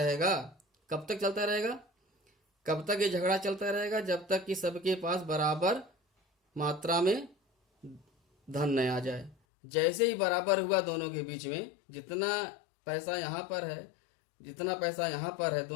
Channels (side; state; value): right; drops out; at 9.3 s